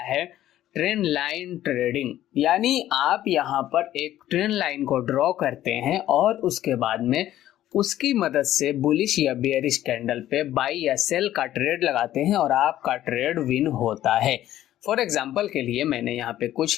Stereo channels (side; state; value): right; quieter; 13.1 dB